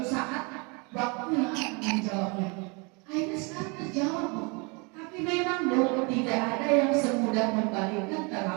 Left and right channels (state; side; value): quieter; left; 30.9 dB